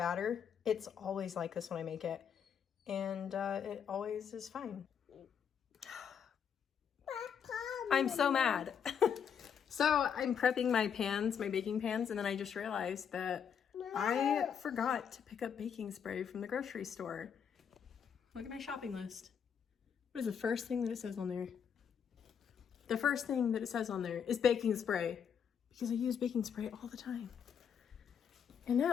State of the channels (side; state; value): right; quieter; 7.6 dB